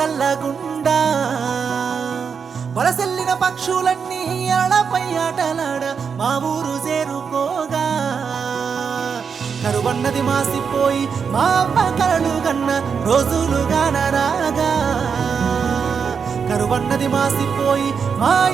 వలసెల్లిన పక్షులన్నీ అలపై ఆటలాడ మా ఊరు చేరుకోగా కరువన్నది మాసిపోయి మా అమ్మ కలలు గన్న రోజులుగాన రాగా కరువన్నది మాసిపోయి మా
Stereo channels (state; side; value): quieter; left; 6.3 dB